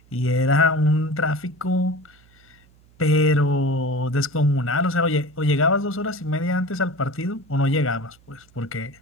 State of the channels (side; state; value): right; noise; hum, 29 dB below the sound